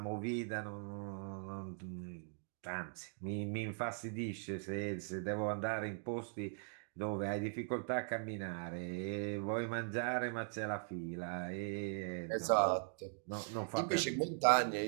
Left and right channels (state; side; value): silent; left; digital silence